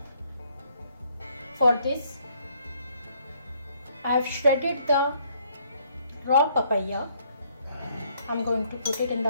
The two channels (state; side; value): inverted; both; correlation -0.67